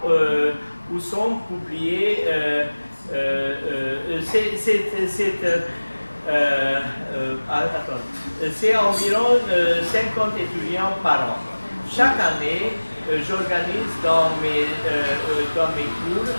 où sont publiés c'est environ 50 étudiants par an. Chaque année, j'organise dans mes cours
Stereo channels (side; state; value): both; inverted; correlation -1.00